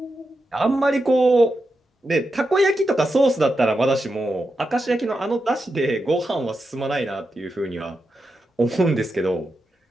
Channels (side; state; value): both; normal; correlation 0.88